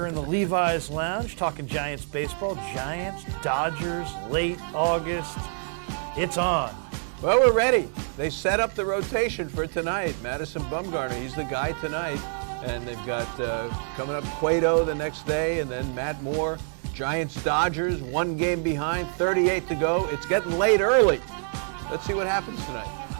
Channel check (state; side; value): silent; left; 61 dB below the other